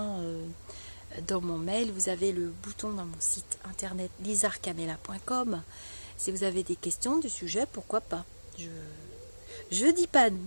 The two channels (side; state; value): both; inverted; correlation -1.00